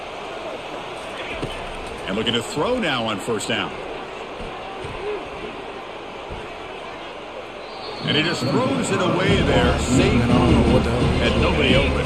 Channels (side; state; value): both; identical; correlation 1.00